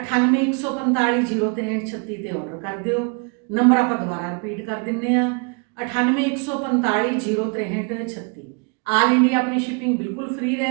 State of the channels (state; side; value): quieter; left; 35.1 dB